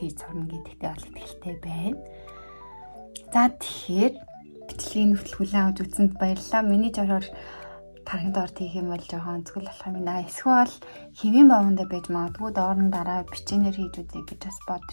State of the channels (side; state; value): both; inverted; correlation -1.00